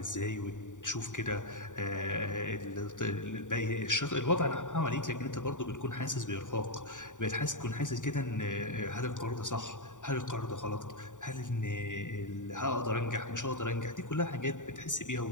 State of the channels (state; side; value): late; right; 0.86 ms